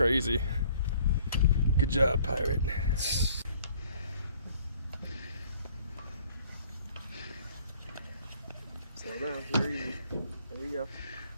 Good job, pirate. Slow down. Here you go. There we go.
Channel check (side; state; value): both; inverted; correlation -0.58